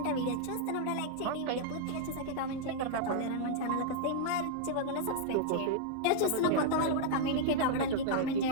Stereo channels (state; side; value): different; both; correlation -0.01